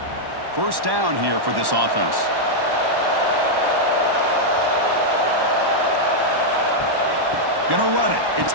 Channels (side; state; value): left; late; 1.1 ms